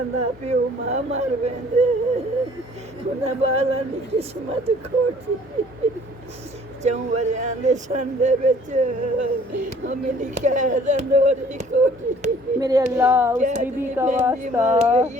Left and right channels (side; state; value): both; normal; correlation 0.55